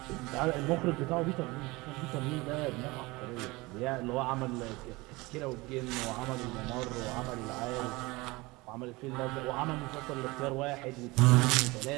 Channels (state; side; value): quieter; left; 22.8 dB